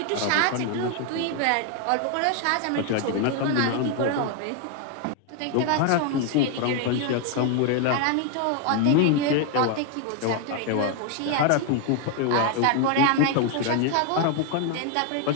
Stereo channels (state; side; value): different; both; correlation 0.01